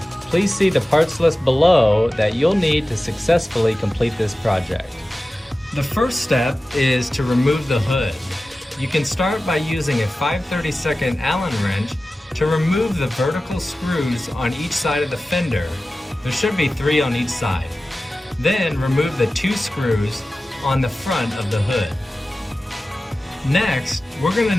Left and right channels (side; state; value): both; normal; correlation 0.95